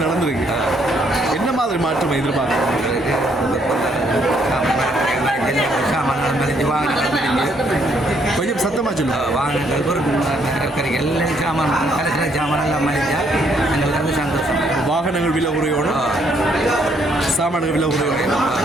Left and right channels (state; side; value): normal; both; correlation 0.70